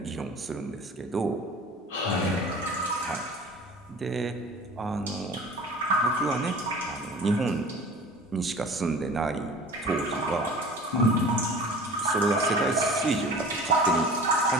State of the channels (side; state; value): both; normal; correlation 0.42